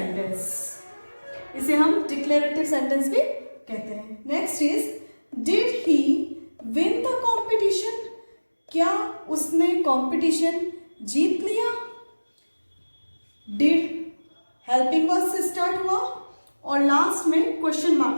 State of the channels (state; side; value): inverted; both; correlation -1.00